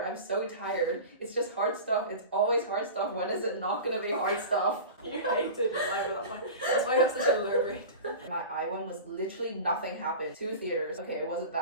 I'm so tired. It's just hard stuff. It's always hard stuff. When is it not gonna be hard stuff? You hated your life at that point. That's why you have such a low rate. My eye one was literally nothing happened. 2 theaters. Okay, it wasn't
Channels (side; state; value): both; inverted; correlation -0.33